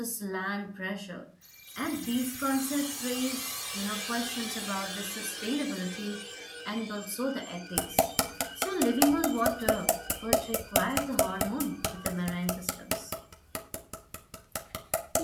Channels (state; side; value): identical; both; correlation 1.00